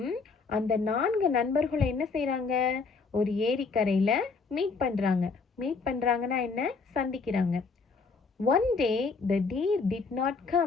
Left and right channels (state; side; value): quieter; right; 4.6 dB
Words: அந்த 4 நண்பர்களும் என்ன செய்றாங்க? ஒரு ஏரிக்கரையில மீட் பண்றாங்கன்னா என்ன? சந்திக்கிறாங்க. One day the deer did not